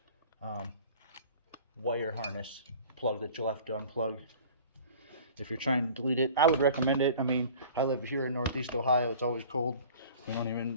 wire harness plug that you'll have to unplug if you're trying to delete it. I would recommend it. I mean, I live here in Northeast Ohio. It's always cold. We don't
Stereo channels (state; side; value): inverted; both; correlation -0.45